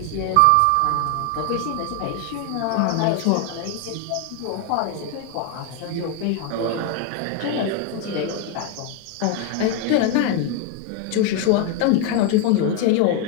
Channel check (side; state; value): both; different; correlation 0.01